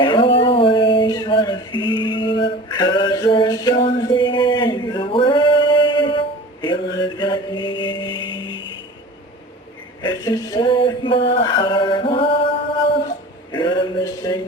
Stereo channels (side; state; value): both; normal; correlation 0.39